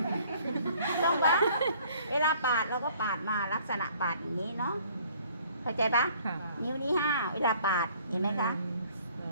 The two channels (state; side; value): inverted; both; correlation -0.57